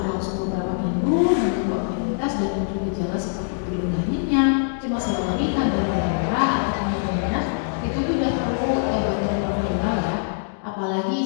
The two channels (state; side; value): silent; right; digital silence